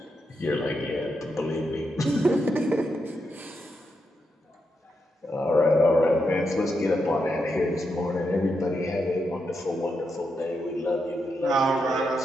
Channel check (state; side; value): normal; both; correlation 0.84